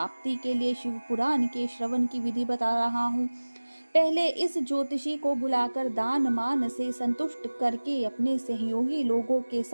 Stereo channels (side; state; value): both; inverted; correlation -1.00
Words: के लिए शिव पुराण के श्रवण की विधि बता रहा हूँ। पहले इस ज्योतिषी को बुलाकर दान मान से संतुष्ट करके अपने सहयोगी लोगों के